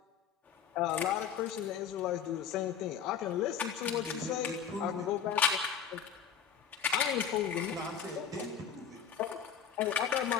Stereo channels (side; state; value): right; quieter; 7.6 dB